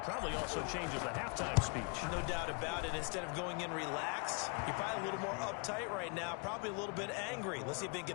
probably also changes the halftime speech. No doubt about it. Instead of going in relaxed, you're probably a little more uptight right now, probably a little bit angry. Let's see if they can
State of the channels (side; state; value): right; quieter; 35.3 dB